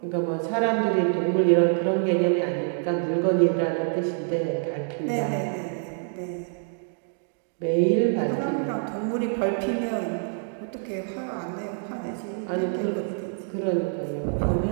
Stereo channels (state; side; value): silent; left; digital silence